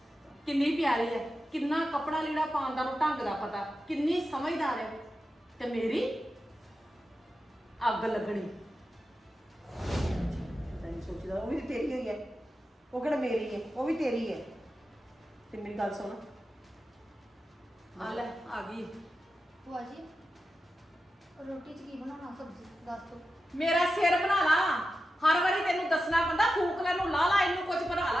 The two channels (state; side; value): normal; both; correlation 0.91